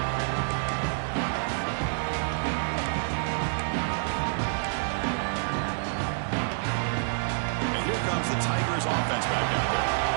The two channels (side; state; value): left; silent; 59 dB below the other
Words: Offense back out there.